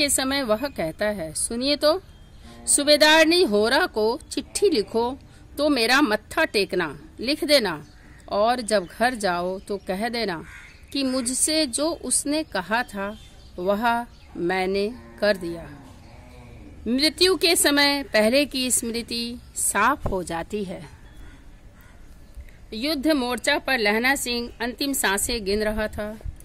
समय वह कहता है, सुनिए तो, सूबेदारनी होरा को चिट्ठी लिखो तो मेरा मत्था टेकना लिख देना, और जब घर जाओ तो कह देना कि मुझसे जो उसने कहा था वह मैंने कर दिया। मृत्यु के समय पहले की स्मृति साफ हो जाती है। युद्ध मोर्चा पर लहना सिंह अंतिम सांसें गिन रहा था।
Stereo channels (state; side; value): identical; both; correlation 1.00